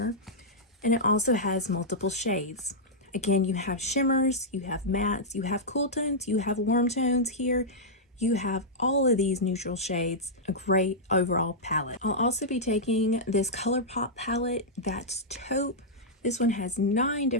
and it also has multiple shades. Again, you have shimmers, you have mattes, you have cool tones, you have warm tones here. You have all of these neutral shades, a great overall palette. I'll also be taking this ColourPop palette, that's taupe. This one has 9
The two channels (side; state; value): both; normal; correlation -0.09